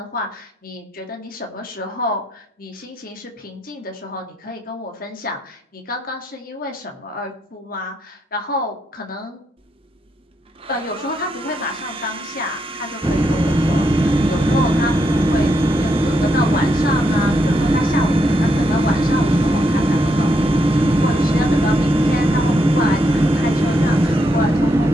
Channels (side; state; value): both; normal; correlation 0.79